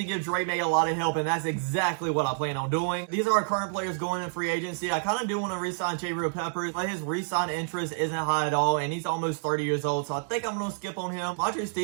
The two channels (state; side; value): silent; left; digital silence